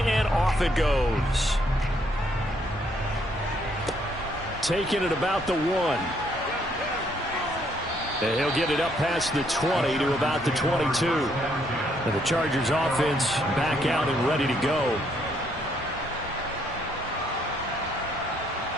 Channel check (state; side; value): normal; both; correlation 0.70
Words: and off it goes. Taking it about the 1. And he'll get it up past the 20 to about the 22. And the Chargers offense back out and ready to go.